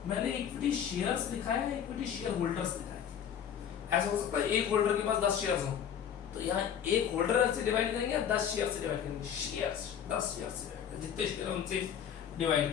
मैंने इक्विटी शेयर्स लिखा है, इक्विटी शेयर होल्डर्स लिखा है। ऐसा हो सकता है एक होल्डर के पास 10 शेयर्स हो, तो यहाँ एक होल्डर से डिवाइड करेंगे, 10 शेयर से डिवाइड करेंगे, शेयर्स 10 शेयर से डिवाइड करेंगे, जितने शेयर उनसे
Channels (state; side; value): quieter; right; 8.7 dB